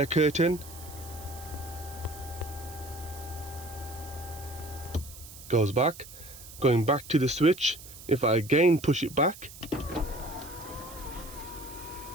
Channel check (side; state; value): right; noise; hiss, 16 dB below the sound